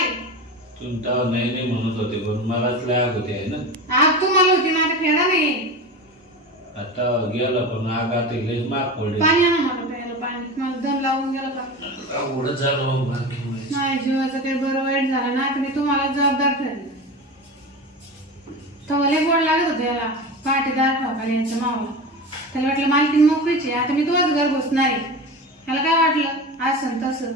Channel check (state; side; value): normal; both; correlation 0.28